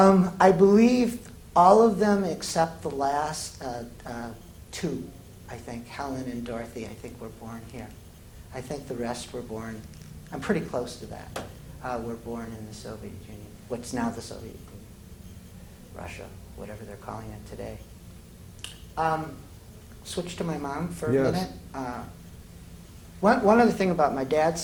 believe all of them except the last two, I think, Helen and Dorothy, I think were born here. I think the rest were born, I'm pretty close to that, were born in the Soviet Union, what's now the Soviet Union, Russia, whatever they're calling it today. Switch to my mom for a minute. One other thing about my dad's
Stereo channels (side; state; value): both; identical; correlation 1.00